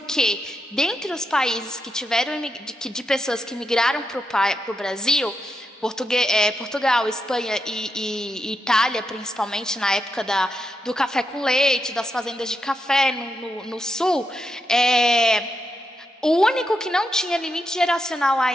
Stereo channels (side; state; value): both; normal; correlation 0.84